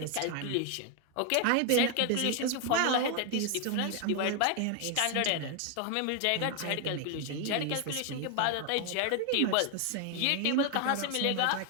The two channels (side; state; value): both; different; correlation 0.01